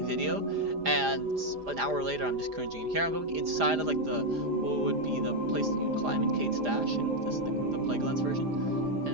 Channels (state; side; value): late; left; 4.9 ms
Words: video, and an hour later I'm just cringing. Here I'm going inside of like what would be the place that you climb in Kate's Dash, and this is the Plaguelands version,